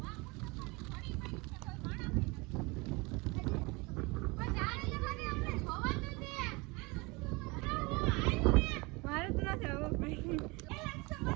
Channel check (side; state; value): left; quieter; 26.0 dB